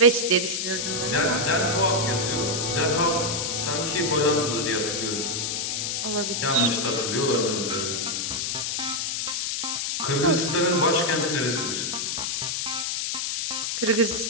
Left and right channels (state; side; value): noise; left; hiss, 1 dB below the sound